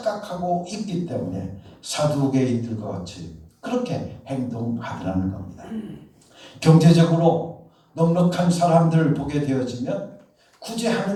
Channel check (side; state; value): both; identical; correlation 1.00